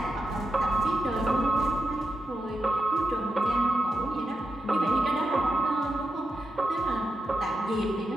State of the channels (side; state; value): both; normal; correlation 0.87